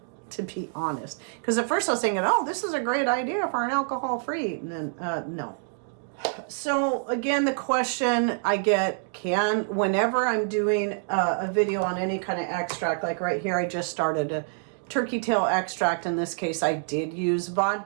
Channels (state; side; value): silent; left; digital silence